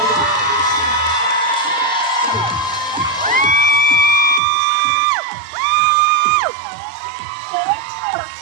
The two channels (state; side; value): drops out; left; at 4.4 s